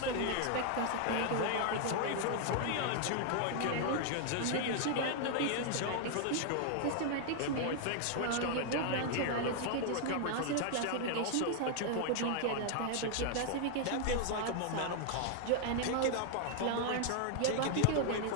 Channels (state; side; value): different; both; correlation 0.00